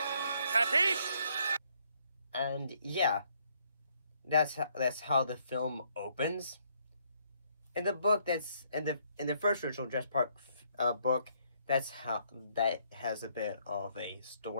Kathy? And yeah, that's how the film opens. In the book, that's in the first original Jurassic Park book, that's how that has a bit of a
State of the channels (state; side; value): inverted; both; correlation -0.69